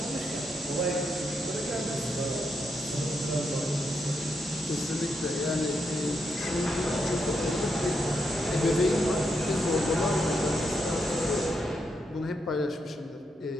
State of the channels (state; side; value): normal; both; correlation 0.82